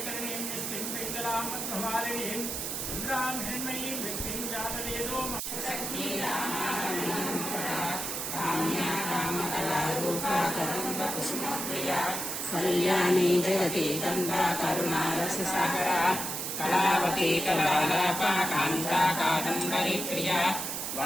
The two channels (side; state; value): right; noise; hiss, 3 dB below the sound